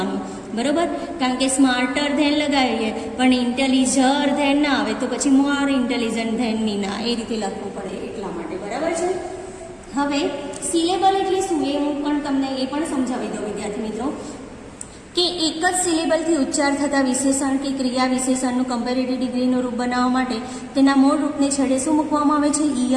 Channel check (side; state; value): both; identical; correlation 1.00